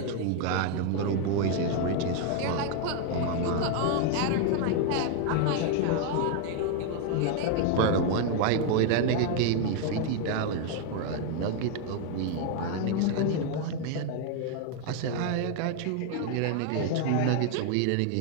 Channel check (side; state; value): both; different; correlation 0.01